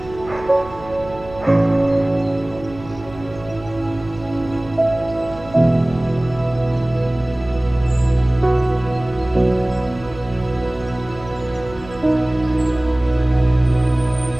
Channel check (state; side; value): noise; right; hum, 18 dB below the sound